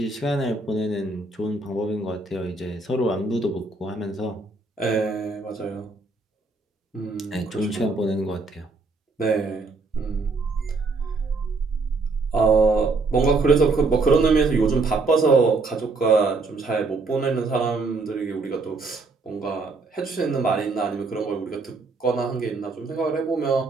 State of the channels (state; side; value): quieter; left; 3.7 dB